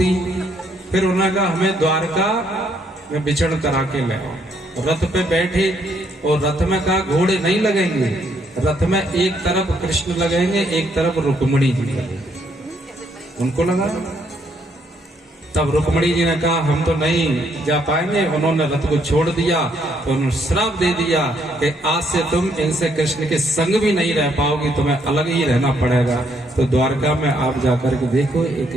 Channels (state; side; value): normal; both; correlation 0.71